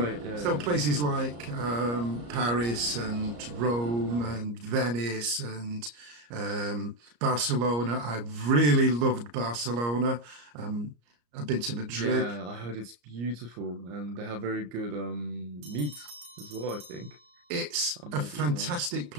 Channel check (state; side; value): late; left; 34 ms